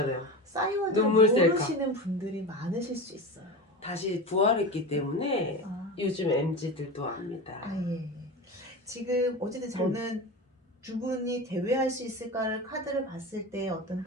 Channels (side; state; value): both; normal; correlation 0.26